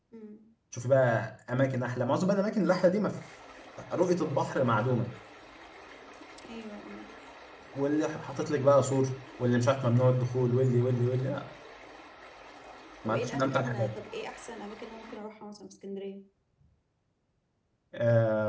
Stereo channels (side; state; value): both; identical; correlation 1.00